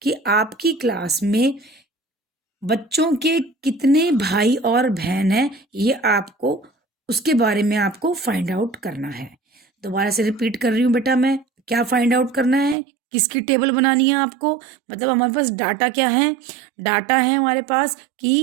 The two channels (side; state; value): left; drops out; at 12.8 s